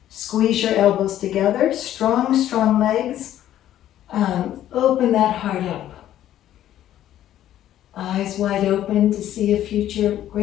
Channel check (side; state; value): right; quieter; 12.2 dB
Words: squeeze your elbows together, strong, strong legs. Open that heart up. Eyes wide open to see a future